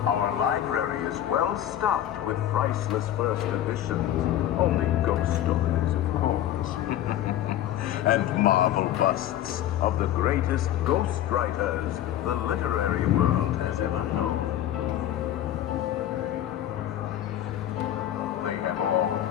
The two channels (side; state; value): right; quieter; 12.0 dB